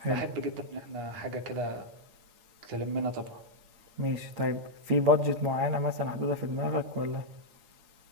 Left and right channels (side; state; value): left; late; 8.8 ms